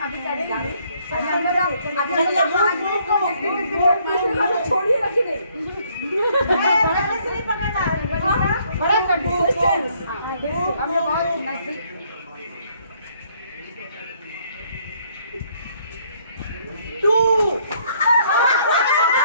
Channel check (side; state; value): both; inverted; correlation -0.66